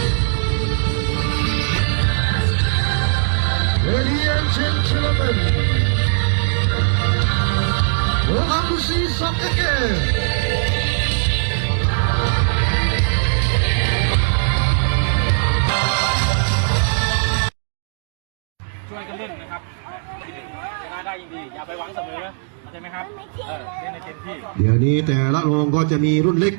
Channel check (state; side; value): silent; left; digital silence